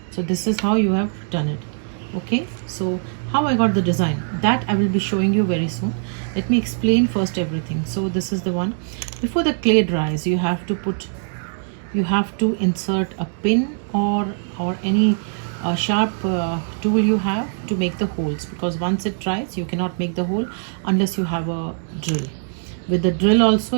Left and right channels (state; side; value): silent; left; digital silence